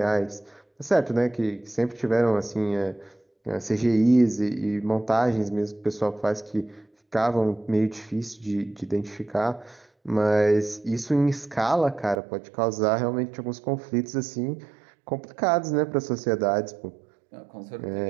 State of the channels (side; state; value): left; drops out; at 12.2 s